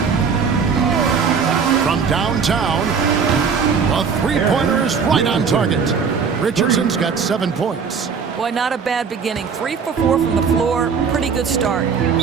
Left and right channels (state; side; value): quieter; left; 6.0 dB